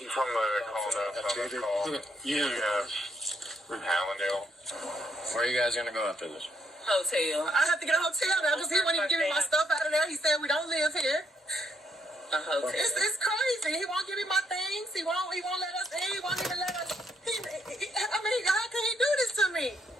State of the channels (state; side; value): normal; both; correlation 0.74